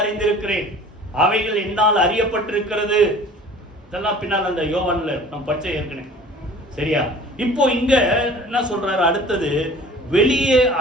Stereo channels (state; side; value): normal; both; correlation 0.46